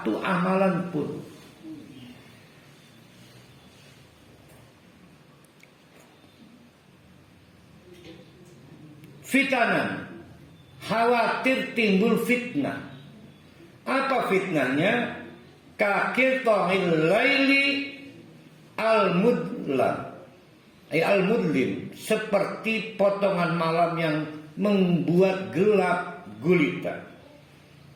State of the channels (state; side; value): identical; both; correlation 1.00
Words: amalan pun. Fitanan, khawatir timbul fitnah. Apa fitnahnya? Kakil tohil laili al-mudlam, al-mudlim, seperti potongan malam yang membuat gelap gulita.